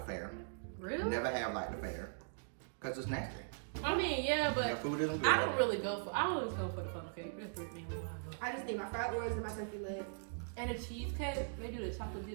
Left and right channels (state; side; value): silent; left; digital silence